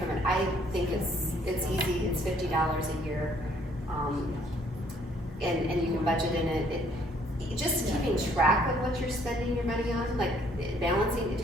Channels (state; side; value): normal; both; correlation 0.64